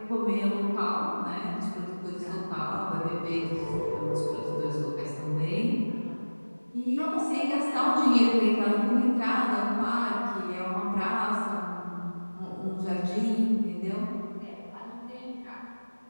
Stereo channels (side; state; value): both; inverted; correlation -1.00